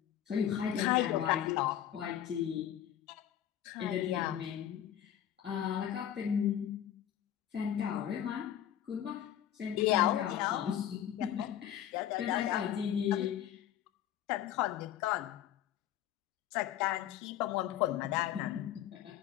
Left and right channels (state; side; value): quieter; right; 10.9 dB